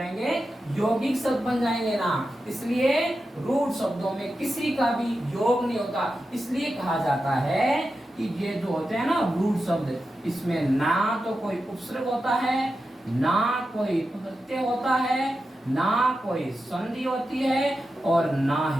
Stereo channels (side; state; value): both; normal; correlation 0.90